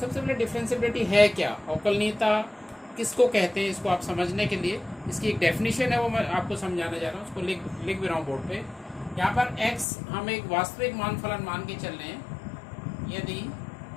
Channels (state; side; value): drops out; right; at 9.9 s